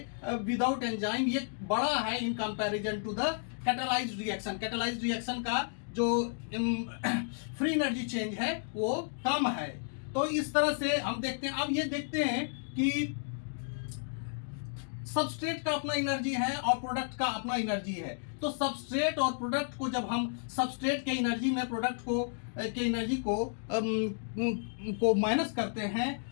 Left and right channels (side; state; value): right; silent; digital silence